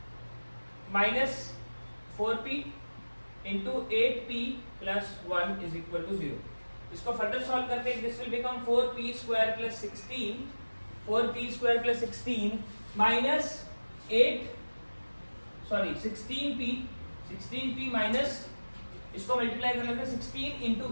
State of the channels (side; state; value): both; inverted; correlation -1.00